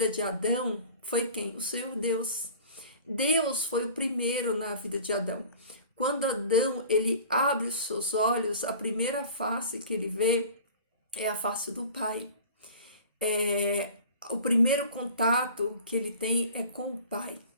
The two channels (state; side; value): inverted; both; correlation -0.42